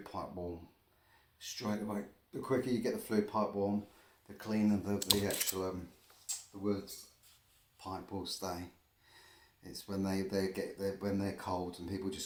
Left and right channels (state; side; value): identical; both; correlation 1.00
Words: warm straight away. The quicker you get the flue pipe warm, the cleaner the actual the wood pipe will stay. It's when when they're cold and people